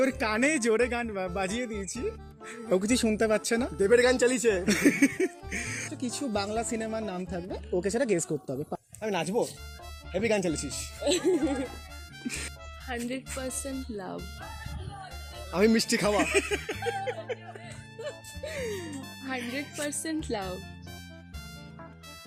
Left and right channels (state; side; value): identical; both; correlation 1.00